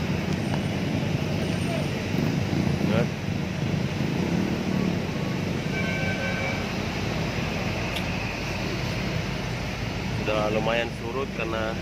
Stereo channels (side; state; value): both; identical; correlation 1.00